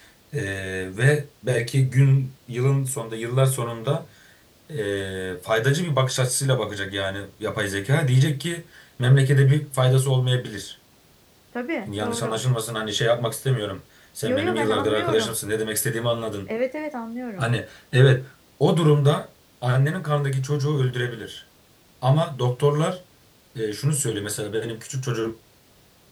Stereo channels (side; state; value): both; identical; correlation 1.00